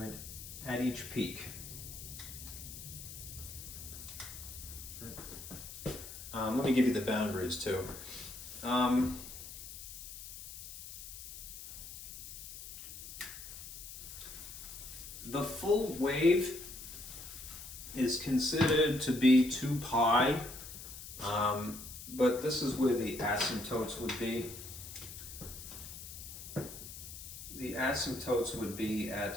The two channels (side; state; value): left; noise; hiss, 11 dB below the sound